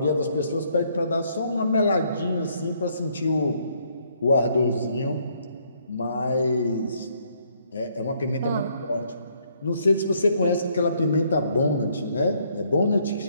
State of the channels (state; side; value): inverted; both; correlation -0.69